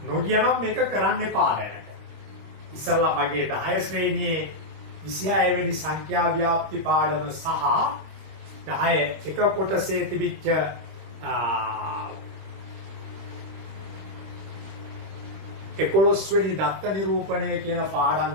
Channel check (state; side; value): late; left; 25 ms